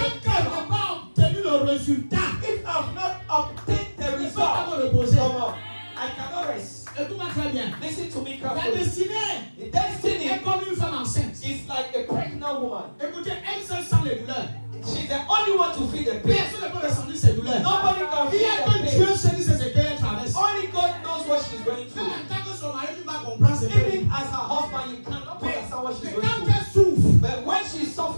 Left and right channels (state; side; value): inverted; both; correlation -1.00